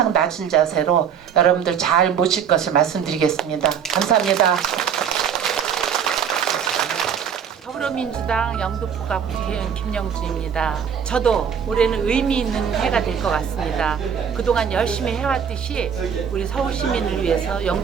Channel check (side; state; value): left; quieter; 7.8 dB